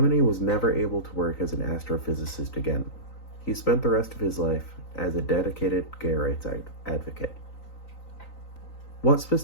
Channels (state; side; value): late; right; 3.9 ms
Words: was never able to work as an astrophysicist again. He spent the rest of his life as a dedicated gay rights advocate. What